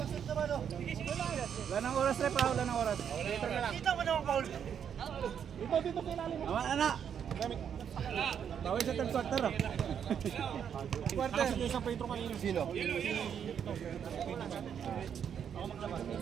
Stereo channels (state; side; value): quieter; left; 8.2 dB